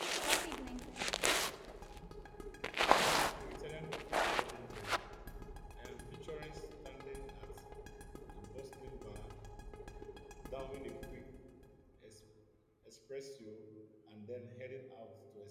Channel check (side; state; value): both; identical; correlation 1.00